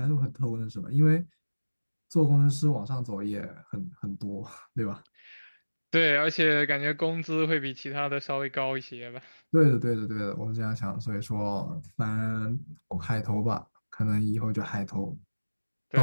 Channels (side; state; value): both; inverted; correlation -1.00